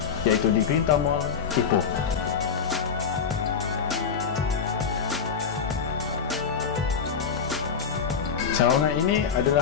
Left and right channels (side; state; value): right; quieter; 6.5 dB